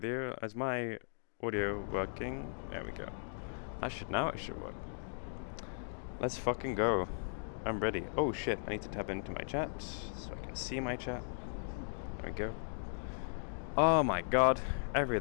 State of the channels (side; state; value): right; silent; digital silence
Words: you. Is my audio working? There we go. Now it should work. Let's fucking go. I'm ready. Oh shit, I need to tap into my chat so I can see my chat. There we go. Oh my god,